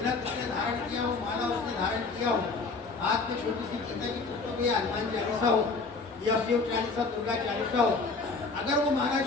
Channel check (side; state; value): right; quieter; 4.1 dB